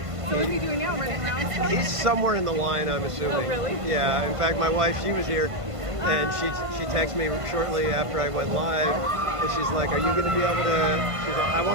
So what is he doing now? Running around? he's somewhere in the line, I'm assuming. Oh, really? Yeah. In fact, my wife, she was here, and she texted me shortly after I went live, and she's like, "Are you going to be able to?" She's like, "I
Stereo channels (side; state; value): left; late; 1.5 ms